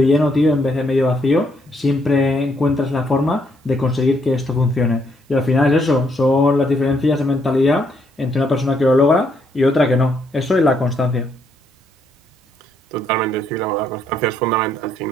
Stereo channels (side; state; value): both; normal; correlation 0.73